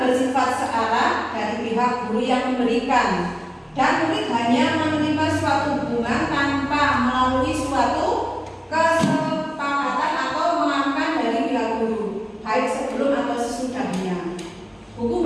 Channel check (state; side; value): identical; both; correlation 1.00